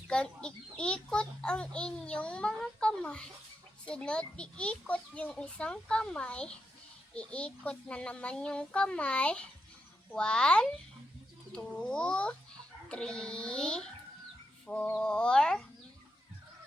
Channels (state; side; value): normal; both; correlation 0.85